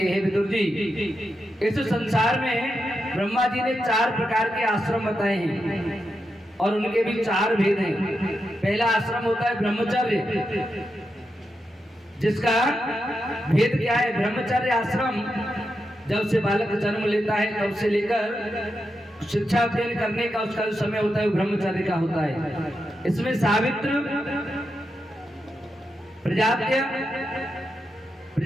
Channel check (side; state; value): both; normal; correlation 0.87